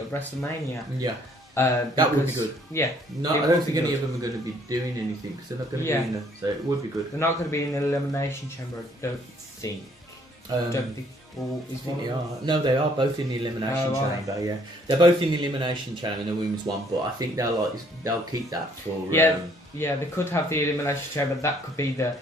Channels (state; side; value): normal; both; correlation 0.63